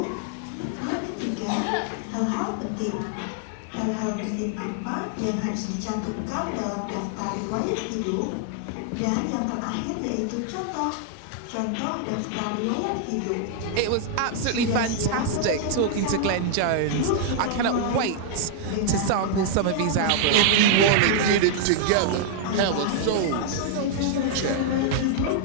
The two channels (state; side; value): different; both; correlation -0.01